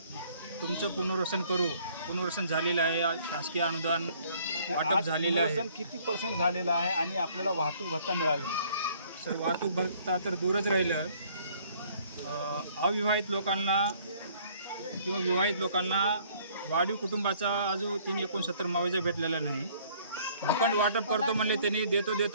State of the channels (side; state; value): both; inverted; correlation -0.59